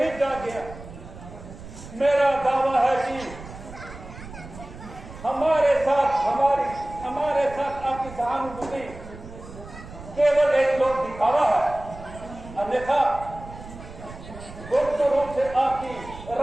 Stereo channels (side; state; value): right; noise; rumble, 15 dB below the sound